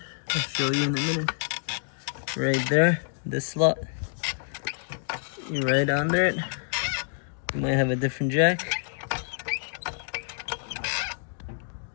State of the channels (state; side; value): silent; right; digital silence